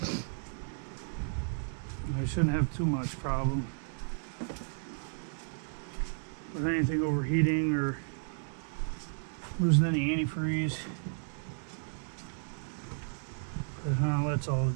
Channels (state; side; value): silent; left; digital silence